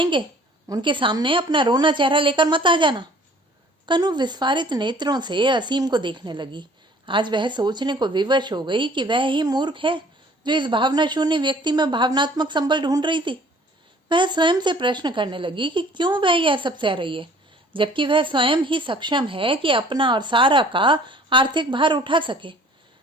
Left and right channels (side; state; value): both; normal; correlation 0.53